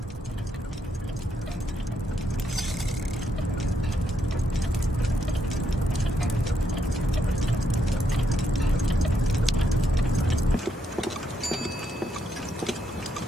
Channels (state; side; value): normal; both; correlation 0.78